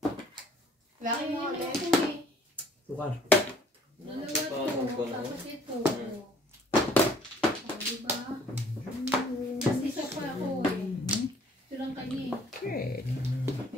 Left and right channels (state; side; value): normal; both; correlation 0.57